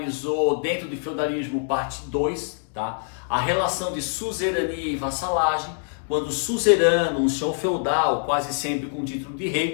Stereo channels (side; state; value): right; silent; 62 dB below the other